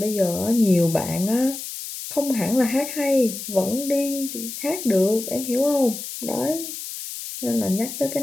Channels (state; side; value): noise; left; hiss, 8 dB below the sound